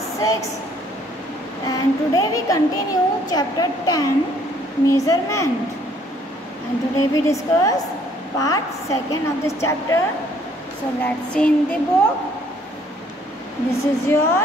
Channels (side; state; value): both; normal; correlation 0.62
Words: 6. And today we continue chapter 10, measurement. And today we discuss part 2 of this chapter. So let's see in the book. This is